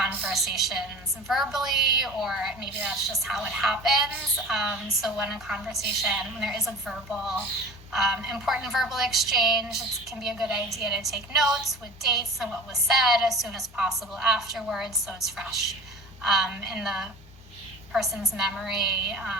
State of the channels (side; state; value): both; normal; correlation 0.38